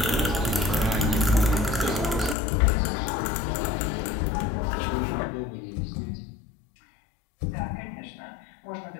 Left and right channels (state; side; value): drops out; right; at 2.4 s